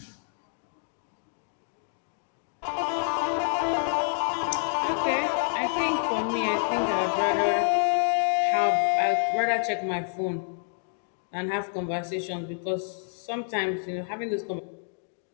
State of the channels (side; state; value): right; silent; 59 dB below the other